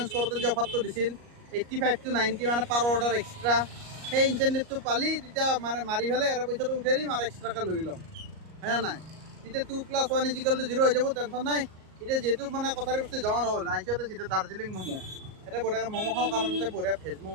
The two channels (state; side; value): late; left; 38 ms